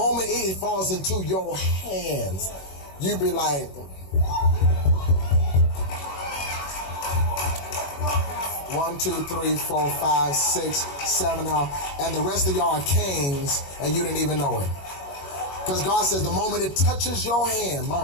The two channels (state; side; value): late; right; 21 ms